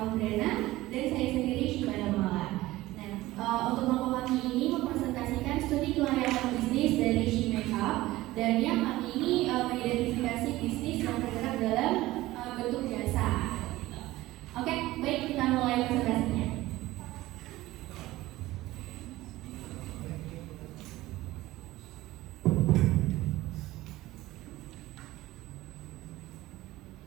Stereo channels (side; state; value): left; quieter; 17.5 dB